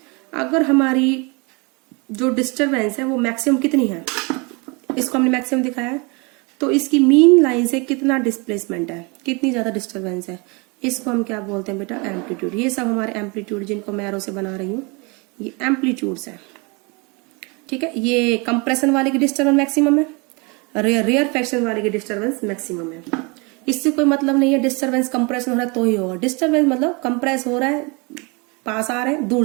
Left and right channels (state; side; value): quieter; left; 29.5 dB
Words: अगर हमारी जो डिस्टरबेंस है वो मैक्सिमम कितनी है, इसको हमने मैक्सिमम दिखाया है, तो इसकी मीन लाइन से कितना डिस्प्लेसमेंट है, कितनी ज्यादा डिस्टरबेंस है, इसको हम क्या बोलते हैं बेटा, एम्पलीट्यूड। ये सब हमारे एम्पलीट्यूड जिनको मैं एरो से बना रही हूँ ये एम्पलीट्यूड्स है। ठीक है, ये कंप्रेशन वाले की डिस्टर्बेंस मैक्सिमम है, रेयर फ्रैक्शन वाले की डिस्टर्बेंस मैक्सिमम है। इससे कोई मतलब नहीं है डिस्टर्बेंस कंप्रेशन हो रहा है तो ही होगा, डिस्टर्बेंस मतलब कंप्रेस हो रहा है, पास आ रहे हैं,